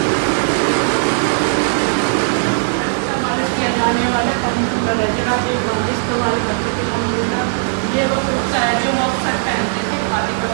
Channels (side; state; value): left; silent; digital silence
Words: किया जाने वाला कंप्यूटर है जो राजीव गांधी इस्तेमाल करते थे कंप्यूटर। ये वो कुर्ता है जो वो अक्सर पहनते थे, खादी का